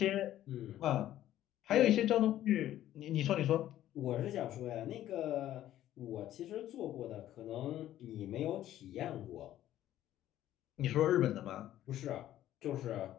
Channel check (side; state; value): right; quieter; 12.8 dB